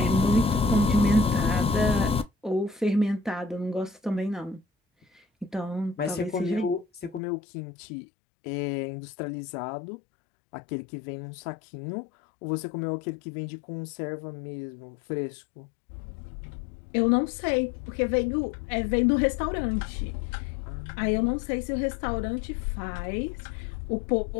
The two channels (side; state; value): right; drops out; at 7.2 s